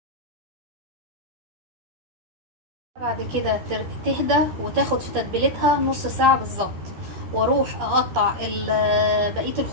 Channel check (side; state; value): left; late; 13 ms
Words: بعد كده تهدى وتاخد في تتبيلتها نص ساعة بالظبط، واروح اقطع بقية